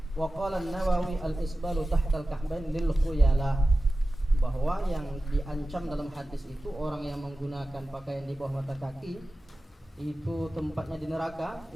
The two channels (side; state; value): both; normal; correlation 0.95